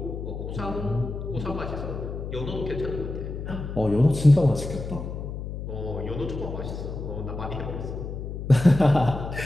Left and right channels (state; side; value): noise; left; hum, 7 dB below the sound